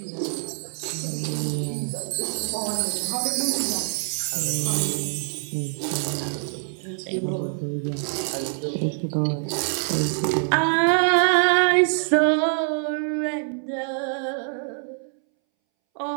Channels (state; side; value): silent; left; 62 dB below the other